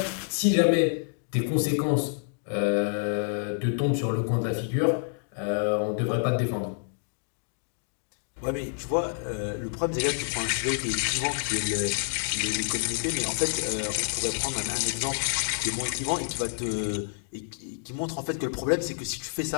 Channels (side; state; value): right; silent; digital silence